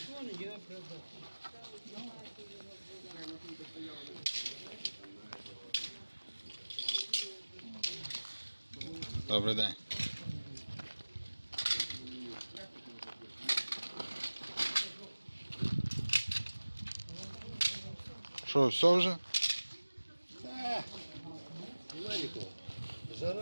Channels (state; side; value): inverted; both; correlation -1.00